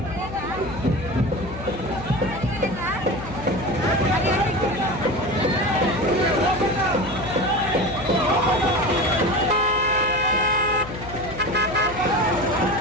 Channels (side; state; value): left; noise; hum, 12 dB below the sound